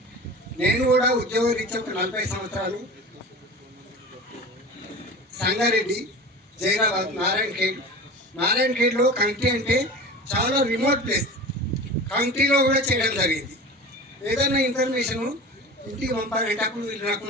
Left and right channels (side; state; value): both; normal; correlation 0.35